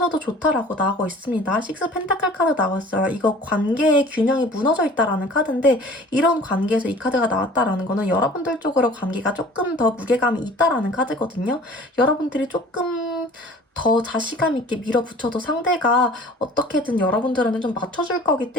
좋다라고 나오고 있습니다. 식스 펜타클 카드 나왔어요. 이거 관계의 균형이 무너져 있다라는 카드인데, 이런 관계에서 이 카드가 나왔다라는 거는 여러분들 쪽으로 관계가 조금 더 무게감이 있다라는 카드거든요. 여러분들이 조금 더 자신감 있게 밀어붙여도 상대가 어떻게든 여러분들한테 좀 맞춰줄 거기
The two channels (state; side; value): normal; both; correlation 0.47